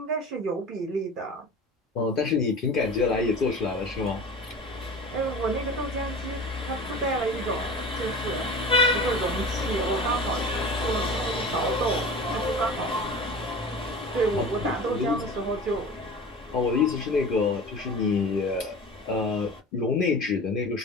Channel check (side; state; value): both; normal; correlation 0.36